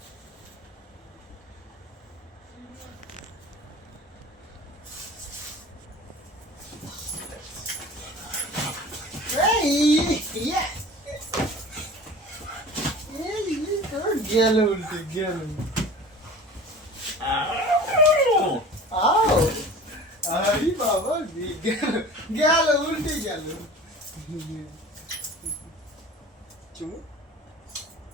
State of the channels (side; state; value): both; normal; correlation 0.40